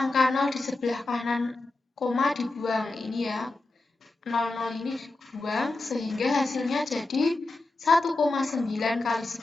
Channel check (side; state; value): right; quieter; 3.1 dB